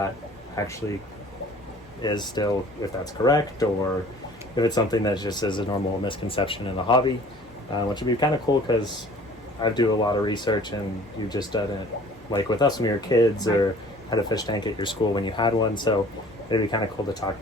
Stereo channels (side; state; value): both; normal; correlation 0.50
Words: actually is still, if that's correct, or if it's something that just is a normal misconception in the hobby, which would be kind of cool because I do a lot of research and you've just done it like with us when we were kids, or had a fish tank at your school when you had one. So it'd be kind of cool to talk